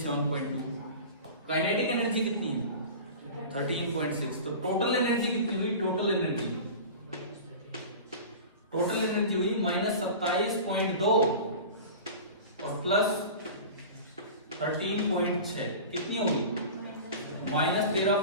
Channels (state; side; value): inverted; both; correlation -0.35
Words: काइनेटिक एनर्जी कितनी है, 13.6। तो टोटल एनर्जी कितनी हुई, टोटल एनर्जी हुई -27.2 और प्लस 13.6, कितनी होगी,